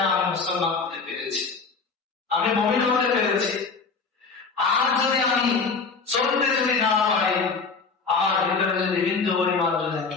আমি মুসলমান হতে পেরেছি, আমি মুমিন হতে পেরেছি। আর যদি আমি চলতে যদি না পারি, আমার ভিতরে যদি বিন্দু পরিমাণ যদি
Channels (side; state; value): right; quieter; 4.8 dB